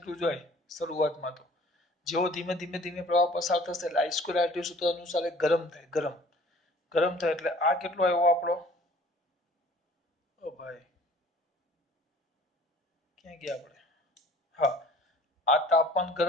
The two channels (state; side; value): normal; both; correlation 0.51